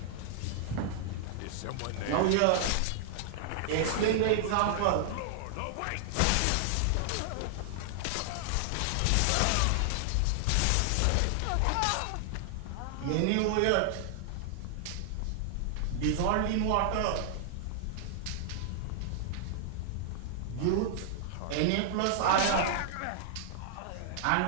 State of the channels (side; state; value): both; different; correlation -0.01